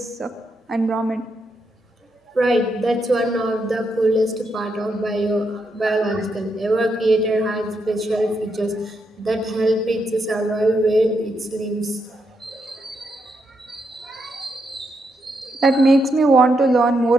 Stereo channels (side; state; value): both; normal; correlation 0.81